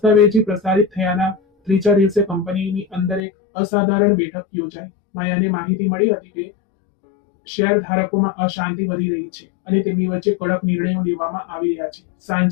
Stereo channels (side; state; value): right; drops out; at 3.2 s